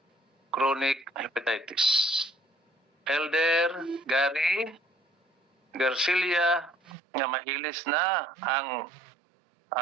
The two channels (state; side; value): drops out; left; at 7.0 s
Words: chronic hepatitis. Elder Gary Garcilia nga mahilis na ang